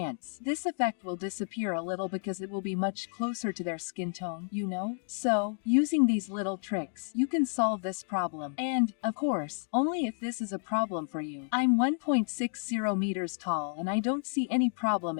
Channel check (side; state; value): right; silent; 57 dB below the other